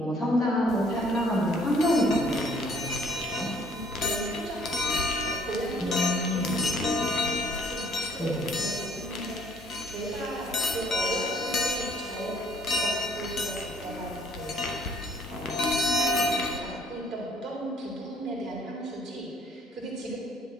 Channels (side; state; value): both; normal; correlation 0.60